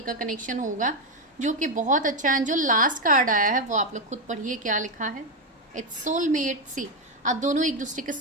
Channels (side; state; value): both; normal; correlation 0.07